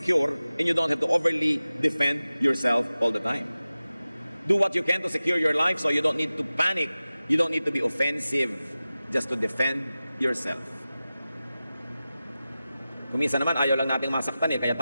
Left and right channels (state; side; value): inverted; both; correlation -0.95